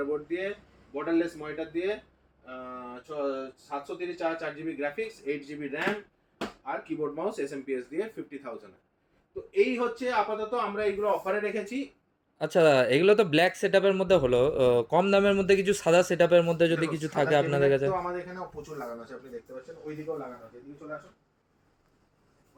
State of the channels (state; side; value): identical; both; correlation 1.00